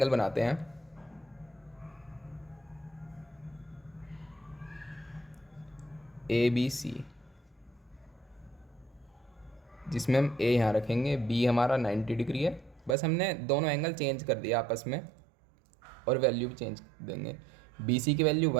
बनाते हैं। ए बी सी, जिसमें हम ए यहाँ रखेंगे, बी हमारा 90 डिग्री है। बस हमने दोनों एंगल चेंज कर दिया आपस में और वैल्यू भी चेंज देंगे। बी सी की वैल्यू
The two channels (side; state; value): left; drops out; at 13.0 s